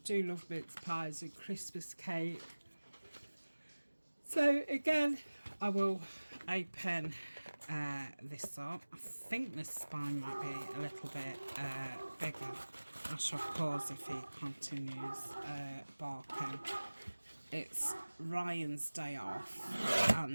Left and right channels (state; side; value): inverted; both; correlation -1.00